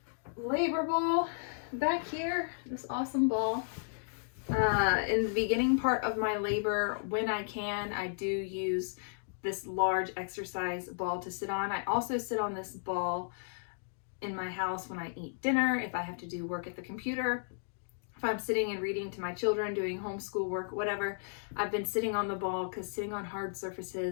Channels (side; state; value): right; silent; digital silence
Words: labor ball back here, this awesome ball. In the beginning part of my labor, when I can, I do use this large exercise ball to sit on. I also sit on this ball in my house when I eat dinner, if I have to do work at the computer, if I'm sitting and reading to my children, doing homeschool work, whatever. I've been sitting on the ball because sitting on hard